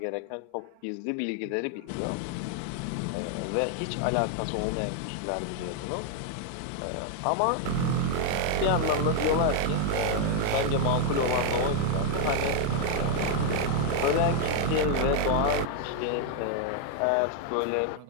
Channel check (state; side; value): different; both; correlation 0.00